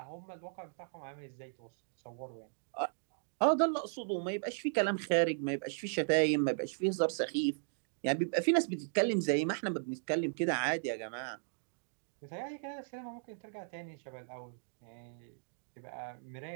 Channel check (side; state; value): left; silent; digital silence